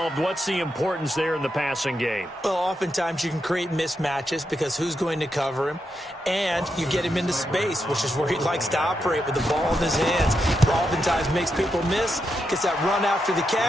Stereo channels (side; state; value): both; normal; correlation 0.84